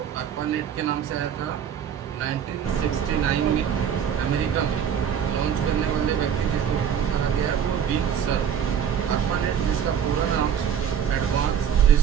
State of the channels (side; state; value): left; quieter; 8.5 dB